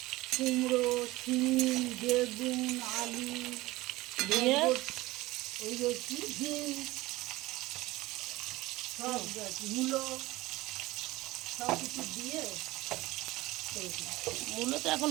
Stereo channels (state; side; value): quieter; left; 19.2 dB